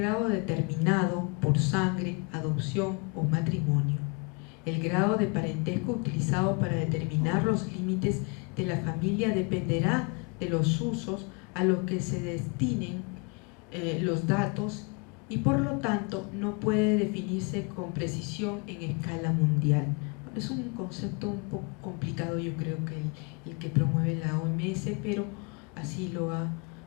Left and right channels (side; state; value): right; quieter; 33.1 dB